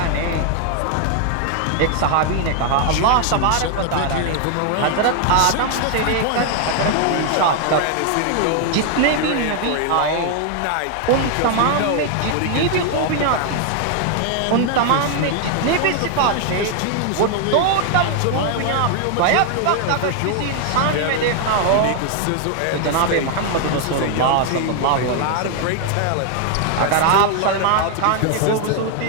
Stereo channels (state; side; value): different; both; correlation 0.00